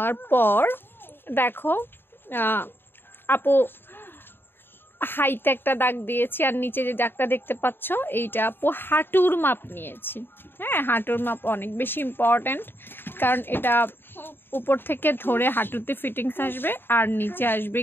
পর দেখো আপু হাইতে একটা দাগ দিয়েছি, আর নিচে যে দাগটা দেখতে পাচ্ছ এইটা আপু হাঁটুর মাপ নিয়েছি। হ্যাঁ, হাঁটুর মাপ অনেক বেশি ইম্পর্ট্যান্ট, কারণ এটা উপর থেকে ধরে হাঁটুতে ফিটিংস আসবে আর নিচে আসবে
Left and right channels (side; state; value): right; late; 0.10 ms